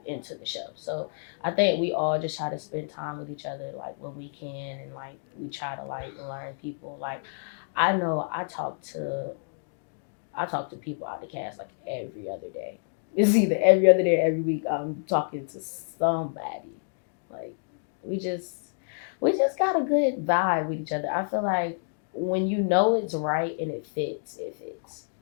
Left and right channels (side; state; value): right; silent; digital silence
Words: into the show. So I think we all just try to spend time with each other, like when we can, and like we try to like learn people. Like I know I talk to people out the cast like every other day. It's either every other day or every week I'm talking to somebody. Like we just got a good vibe with each other. I feel like when you know it's right and it fits, it fits.